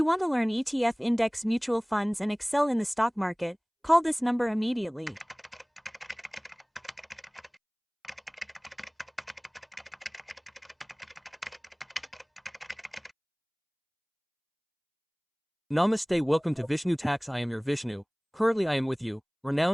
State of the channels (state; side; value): identical; both; correlation 1.00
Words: want to learn ETF index mutual funds and excel in the stock market, call this number immediately. Namaste, welcome to Vishnu Tax. I am your Vishnu. Currently I am with you,